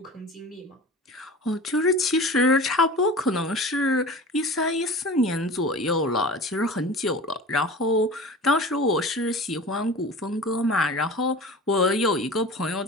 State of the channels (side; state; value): both; normal; correlation 0.36